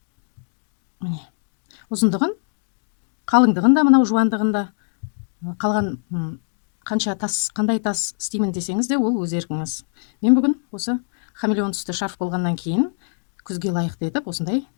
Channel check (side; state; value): right; silent; digital silence